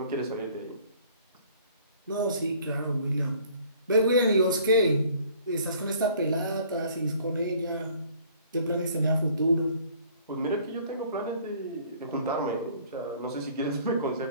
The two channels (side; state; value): both; inverted; correlation -0.56